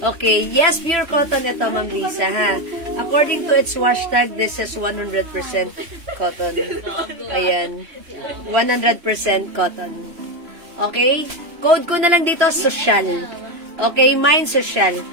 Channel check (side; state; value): left; late; 3.0 ms